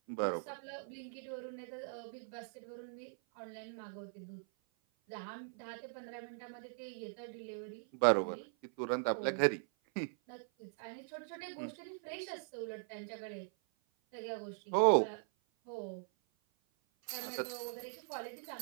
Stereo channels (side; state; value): left; silent; 51 dB below the other